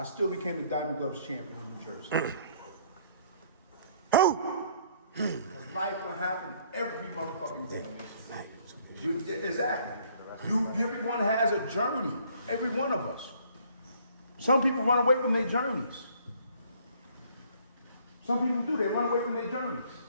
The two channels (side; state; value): both; inverted; correlation -0.61